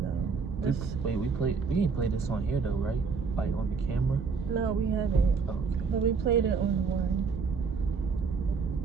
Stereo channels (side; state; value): left; quieter; 5.2 dB